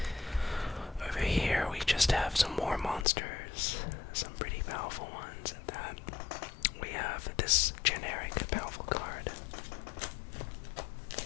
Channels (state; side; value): drops out; right; at 3.1 s